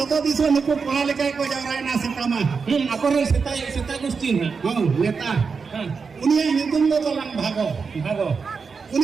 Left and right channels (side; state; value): left; quieter; 5.3 dB